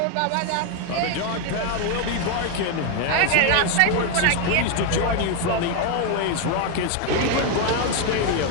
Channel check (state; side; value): different; both; correlation 0.01